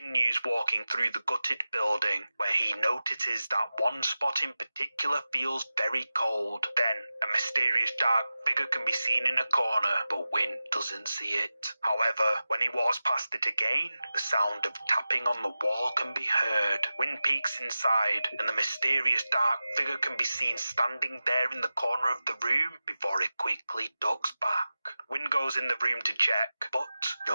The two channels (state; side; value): inverted; both; correlation -0.94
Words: walking through the gutted building, where he notices that one spot in particular feels very cold. Then, a mysterious dark figure can be seen in a corner, but Win doesn't see it. However, when he walks past it again, the sound of tapping on the wall can be heard. Win peeks inside, and the mysterious dark figure can be seen standing there in the corner of the room before it quickly ducks back. Win goes in the room to check, but